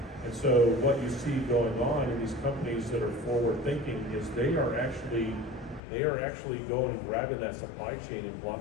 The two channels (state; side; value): drops out; right; at 5.8 s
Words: And so what you see going on in these companies that are forward thinking is they are actually going and grabbing that supply chain and